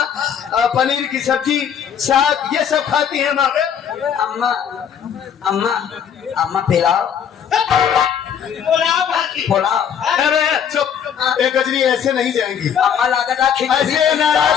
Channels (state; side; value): quieter; right; 8.1 dB